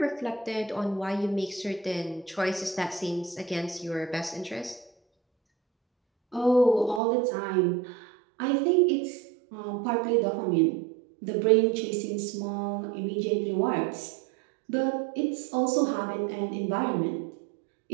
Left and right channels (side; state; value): left; drops out; at 7.0 s